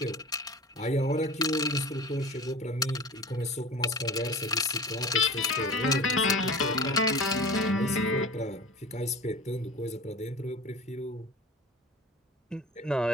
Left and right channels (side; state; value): both; normal; correlation 0.37